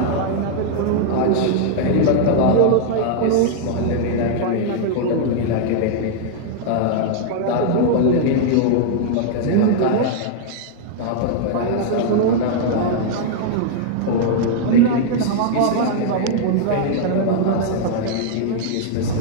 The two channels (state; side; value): different; both; correlation -0.01